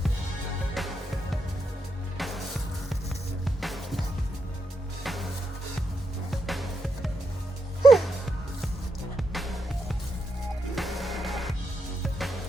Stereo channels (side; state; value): both; normal; correlation 0.83